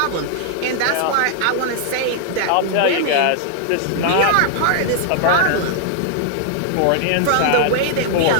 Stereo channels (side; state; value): both; different; correlation -0.01